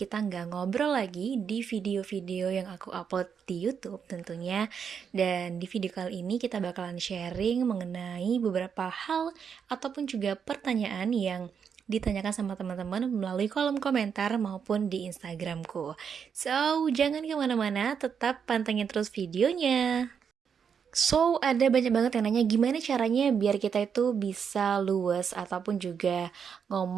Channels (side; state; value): left; quieter; 7.0 dB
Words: nggak ngobrol lagi di video-video yang aku upload di YouTube tentunya. Dan di video kali ini kita bakalan sharing mengenai beberapa hal ataupun juga pertanyaan yang ditanyakan sama teman-teman melalui kolom komentar maupun di Instagramku. So, jangan kemana-mana, tetap pantengin terus videonya. So, ada banyak banget yang nanya gimana caranya biar kita itu bisa luwes ataupun juga